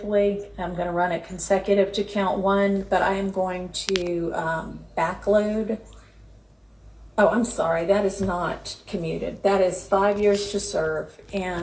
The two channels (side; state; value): both; identical; correlation 1.00